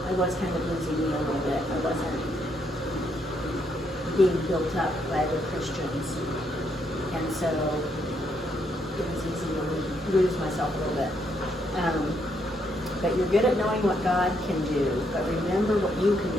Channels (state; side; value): normal; both; correlation 0.75